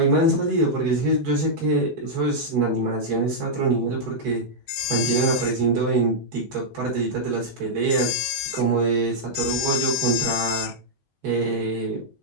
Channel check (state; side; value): normal; both; correlation -0.07